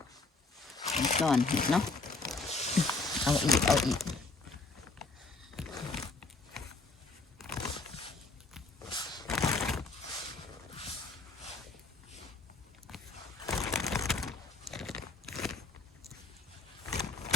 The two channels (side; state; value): right; quieter; 3.6 dB